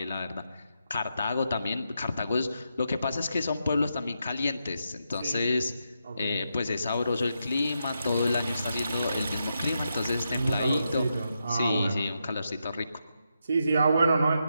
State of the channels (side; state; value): both; inverted; correlation -0.83